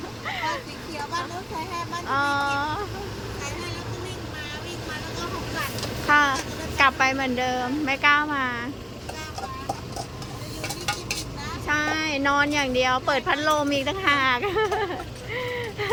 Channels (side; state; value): both; identical; correlation 1.00